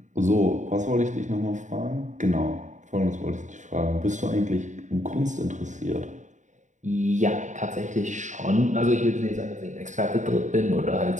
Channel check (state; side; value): late; left; 0.35 ms